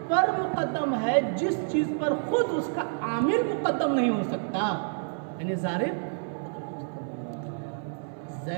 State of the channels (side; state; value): left; silent; 59 dB below the other